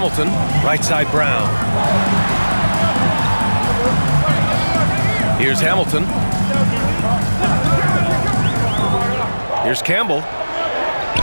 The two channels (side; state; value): both; inverted; correlation -1.00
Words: Right side Brown. Here's Hamilton. Here's Campbell.